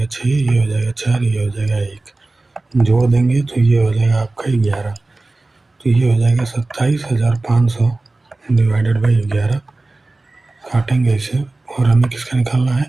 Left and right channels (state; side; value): quieter; left; 3.1 dB